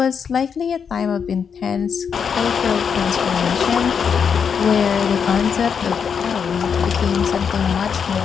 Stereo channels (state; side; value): quieter; right; 6.8 dB